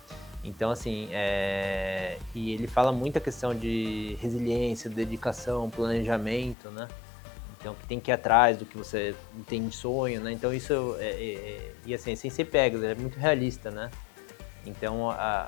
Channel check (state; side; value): drops out; right; at 6.6 s